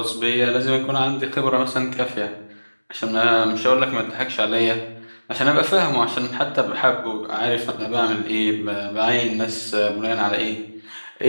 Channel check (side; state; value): both; inverted; correlation -1.00